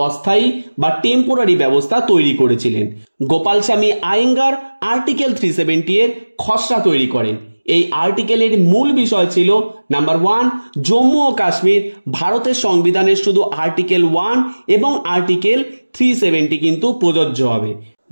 অস্থায়ী বা টেম্পোরারি ব্যবস্থা তৈরি করেছিলেন। গোপাল স্বামী আয়েঙ্গার আর্টিকেল 370 এর খসড়া তৈরি করেন। এই আর্টিকেলের মূল বিষয় ছিল নাম্বার 1, জম্মু ও কাশ্মীর ভারতের সংবিধানের শুধু আর্টিকেল 1 এবং আর্টিকেল 370 কিন্তু প্রযোজ্য হবে।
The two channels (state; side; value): inverted; both; correlation -1.00